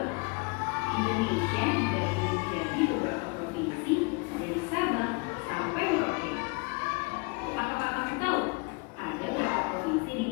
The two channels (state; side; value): quieter; right; 31.1 dB